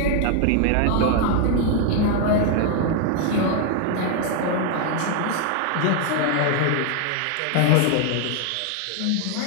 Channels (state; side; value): different; both; correlation 0.00